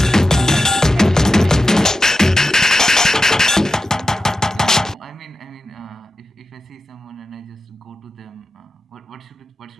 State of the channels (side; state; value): both; normal; correlation 0.91